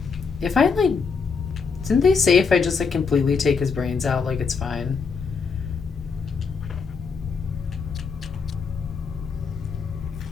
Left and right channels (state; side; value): quieter; right; 5.3 dB